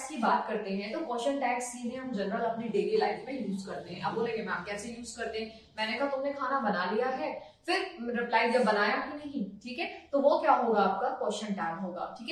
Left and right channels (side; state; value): both; identical; correlation 1.00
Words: की बात करते हैं, तो क्वेश्चन टैग्स सीधे हम जनरल अपनी डेली लाइफ में यूज करते हैं। अब बोलेंगे मैम कैसे यूज करते हैं, मैंने कहा तुमने खाना बना लिया है, फिर रिप्लाई जब बनाया कि नहीं, ठीक है, तो वो क्या होगा, आपका क्वेश्चन टैग होगा, ठीक